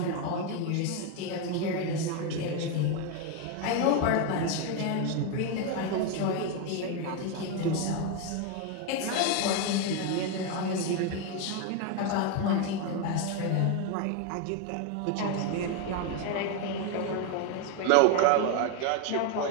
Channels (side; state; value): both; different; correlation 0.02